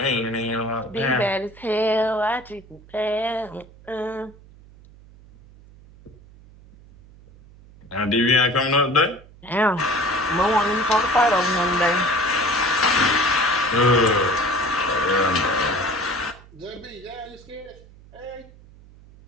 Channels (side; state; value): right; noise; hum, 23 dB below the sound